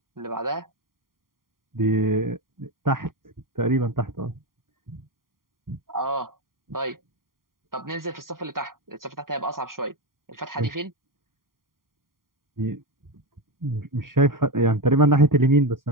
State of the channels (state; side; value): late; left; 0.91 ms